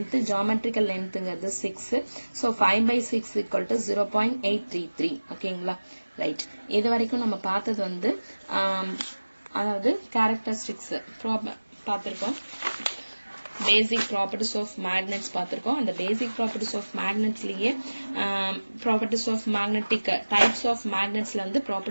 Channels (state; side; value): inverted; both; correlation -1.00